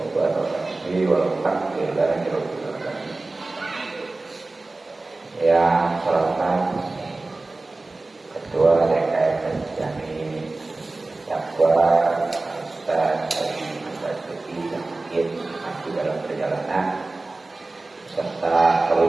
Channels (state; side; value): quieter; left; 3.2 dB